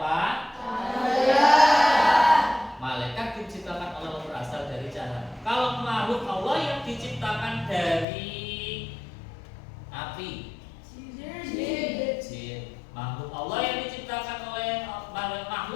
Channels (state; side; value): drops out; right; at 8.1 s